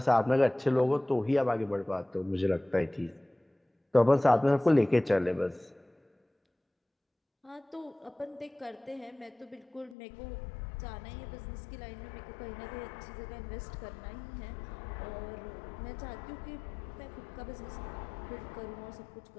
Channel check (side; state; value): right; drops out; at 10.0 s